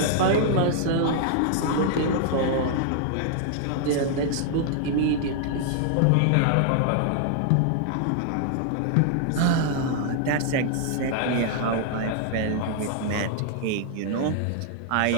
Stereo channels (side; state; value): both; different; correlation 0.00